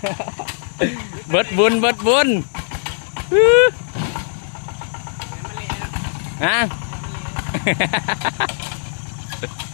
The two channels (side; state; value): right; silent; digital silence